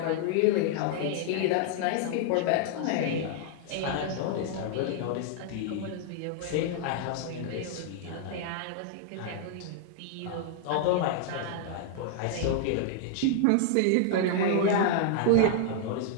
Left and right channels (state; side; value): different; both; correlation -0.01